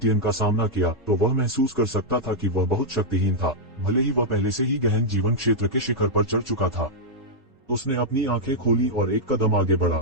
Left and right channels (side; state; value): both; normal; correlation -0.05